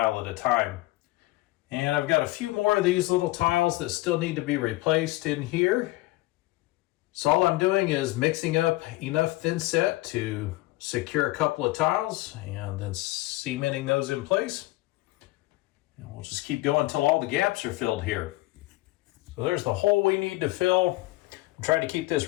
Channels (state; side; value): quieter; right; 19.3 dB